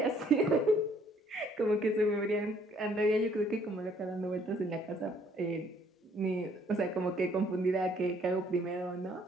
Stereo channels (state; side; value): normal; both; correlation 0.63